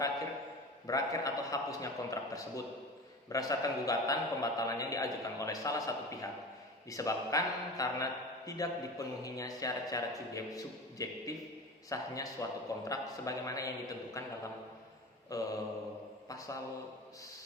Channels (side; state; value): both; normal; correlation 0.32